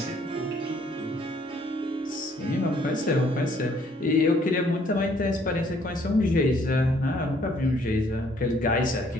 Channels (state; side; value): normal; both; correlation 0.63